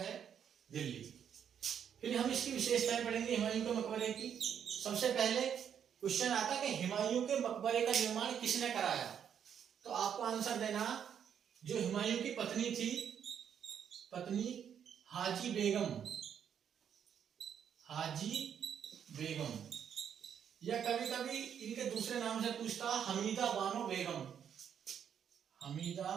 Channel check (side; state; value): left; quieter; 8.5 dB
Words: दिल्ली। फिर हम इसकी विशेषताएं पढ़ेंगे हुमायूं के मकबरे की। सबसे पहले क्वेश्चन आता कि हुमायूं के मकबरे का निर्माण किसने कराया। तो आपको आंसर देना, जो हुमायूं की पत्नी थी, पत्नी हाजी बेगम, या कभी कभी इनके दूसरे नाम से पूछता हमीदा बानो बेगम।